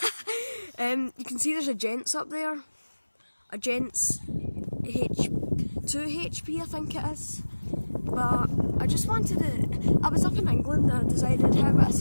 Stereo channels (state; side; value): inverted; both; correlation -1.00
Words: you can see there's a Gents up there. A Gents 2 HP I think it is. But I just wanted to, I was up in England and I decided how would I